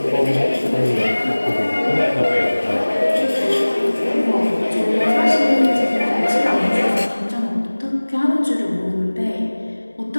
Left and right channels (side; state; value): both; inverted; correlation -1.00